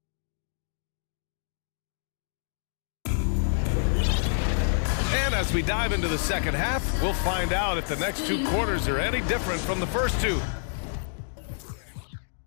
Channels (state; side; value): silent; right; digital silence